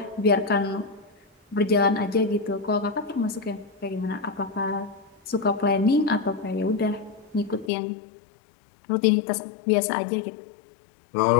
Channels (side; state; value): right; drops out; at 7.7 s